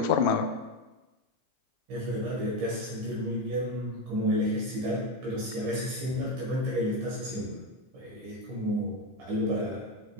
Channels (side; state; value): left; late; 15 ms